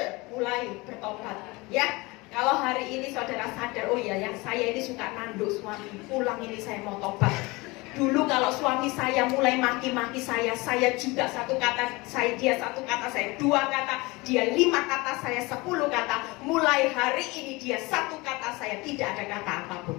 mulai bertobat ya. Kalau hari ini saudara sadar, oh ya, yang saya ini suka nanduk suami, pulang ini saya mau tobat. Dulu kalau suami saya mulai maki-maki saya juga satu kata, dia satu kata, saya 2 kata, dia 5 kata, saya 10 kata. Mulai hari ini dia 1 kata, saya tidak ada kata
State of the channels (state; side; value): quieter; right; 23.7 dB